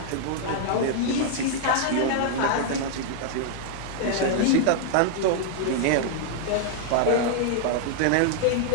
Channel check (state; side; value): different; both; correlation 0.00